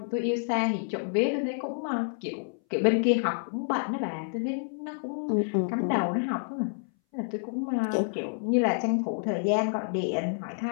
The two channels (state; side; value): silent; right; 59 dB below the other